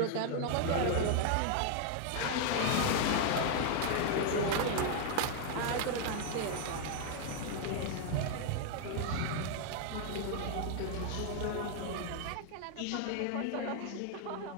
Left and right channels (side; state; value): both; different; correlation 0.00